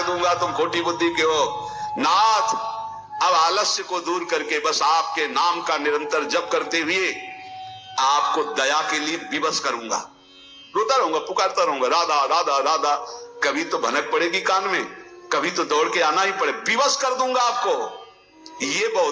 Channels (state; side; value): identical; both; correlation 1.00